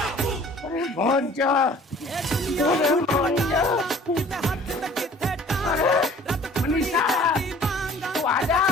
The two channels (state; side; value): normal; both; correlation 0.51